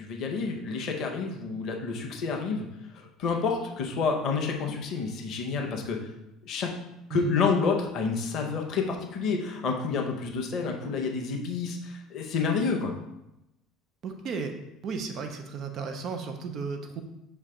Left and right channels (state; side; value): quieter; right; 3.8 dB